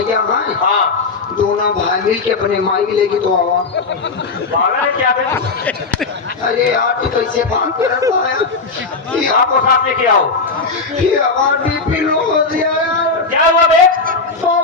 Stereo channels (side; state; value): right; quieter; 4.2 dB